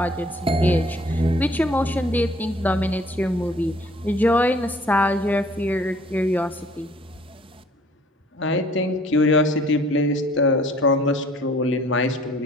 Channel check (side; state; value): both; normal; correlation 0.56